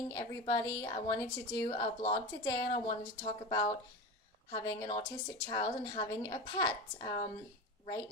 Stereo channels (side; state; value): both; normal; correlation 0.26